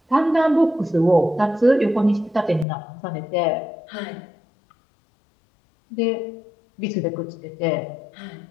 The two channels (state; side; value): drops out; right; at 2.7 s